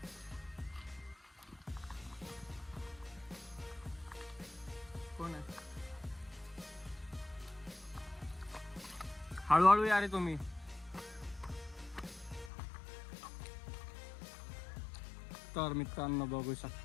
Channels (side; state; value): right; drops out; at 12.5 s